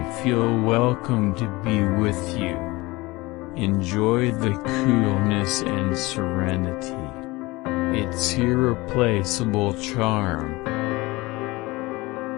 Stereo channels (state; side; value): quieter; right; 21.9 dB